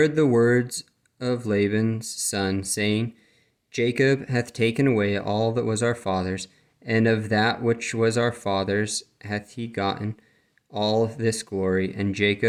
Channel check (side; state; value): both; identical; correlation 1.00